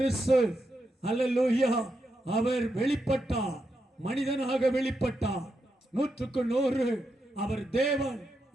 அல்லேலூயா அவர் வெளிப்பட்டார், மனிதனாக வெளிப்பட்டார். 100% அவர் தேவன்.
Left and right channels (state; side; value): normal; both; correlation 0.84